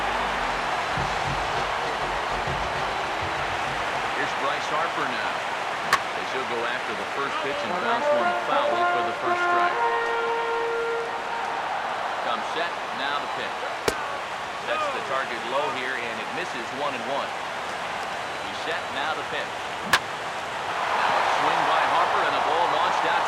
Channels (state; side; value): identical; both; correlation 1.00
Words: Here's Bryce Harper now. As he'll go after the first pitch and bounce one foul for the first strike. Comes set, now the pitch. Sets the target low here, and it misses 1-1. He's set, now the pitch. Now a swing by Harper, and the ball launched